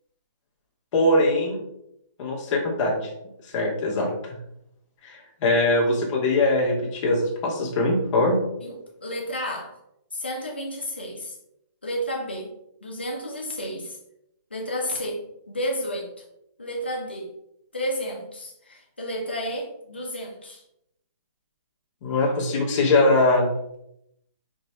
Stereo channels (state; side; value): inverted; both; correlation -0.41